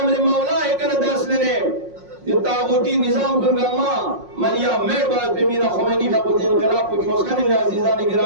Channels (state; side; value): late; left; 5.5 ms